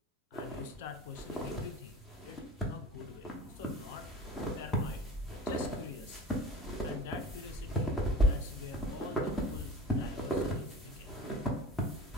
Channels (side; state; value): both; normal; correlation 0.37